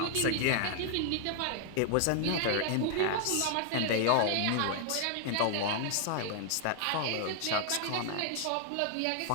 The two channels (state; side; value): different; both; correlation 0.00